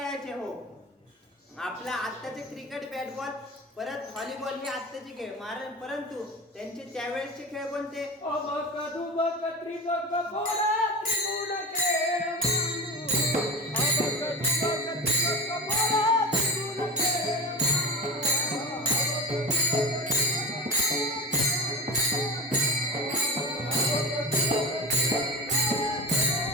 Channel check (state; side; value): normal; both; correlation 0.27